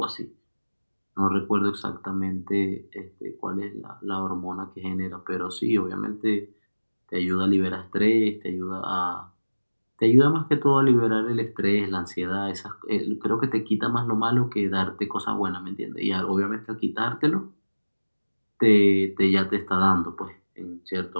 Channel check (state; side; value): inverted; both; correlation -1.00